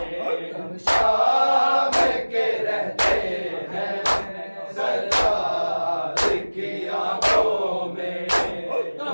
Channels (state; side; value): inverted; both; correlation -1.00